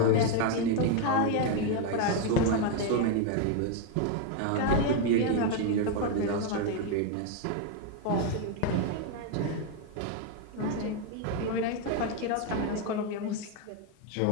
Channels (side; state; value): both; different; correlation 0.01